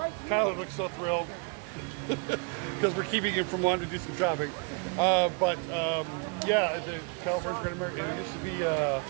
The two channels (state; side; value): quieter; left; 34.0 dB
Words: Tyler looks so thrilled because we're keeping him from wanting to do some shopping. Yeah, the California's Great America. It used to be